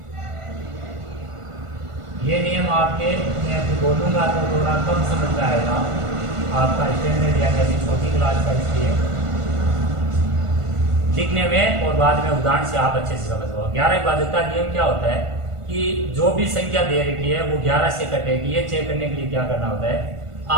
ये नियम आपके, मैं अभी बोलूँगा तो थोड़ा कम समझ में आएगा आपका स्टैंडर्ड यानी अभी छोटी क्लास का, इसलिए लिखने में और बाद में उदाहरण से आप अच्छे से समझ पाओ। 11 की भाजकता नियम क्या होता है कि जो भी संख्या दे रखी है वो 11 से कटेगी। ये चेक करने के लिए क्या करना होता है,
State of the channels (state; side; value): late; left; 1.5 ms